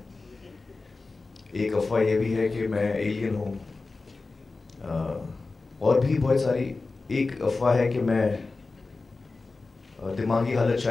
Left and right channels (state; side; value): quieter; right; 3.7 dB